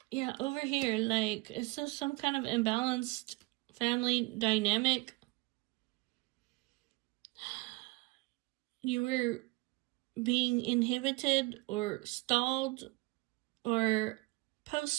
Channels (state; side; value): quieter; left; 23.6 dB